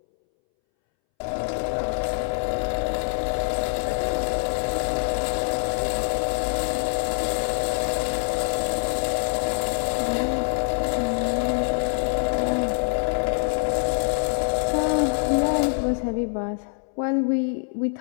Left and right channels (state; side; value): silent; right; 62 dB below the other